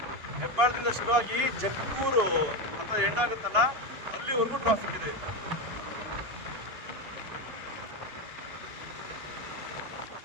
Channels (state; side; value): late; left; 2.8 ms